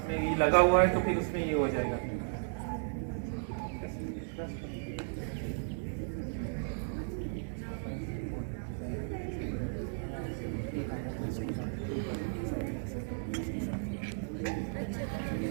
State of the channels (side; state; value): left; silent; digital silence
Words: में ये लगा हुआ है तो फिर उसमें ये हो जाएगा।